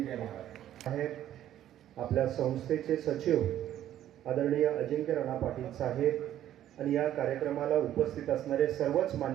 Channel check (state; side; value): quieter; left; 11.9 dB